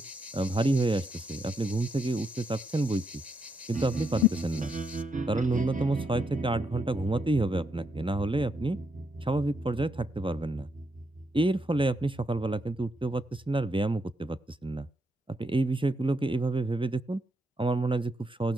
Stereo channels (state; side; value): normal; both; correlation 0.79